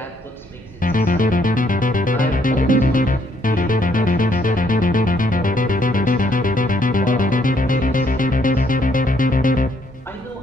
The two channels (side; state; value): both; normal; correlation 0.69